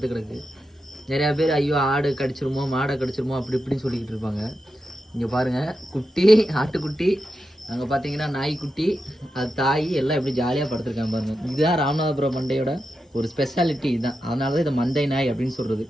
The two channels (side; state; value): both; normal; correlation 0.88